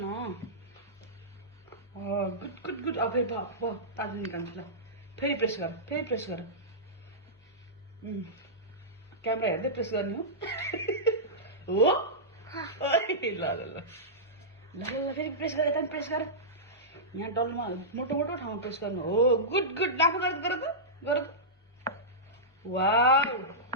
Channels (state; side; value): normal; both; correlation -0.15